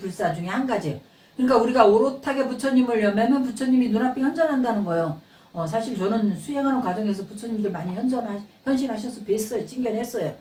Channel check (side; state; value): both; identical; correlation 1.00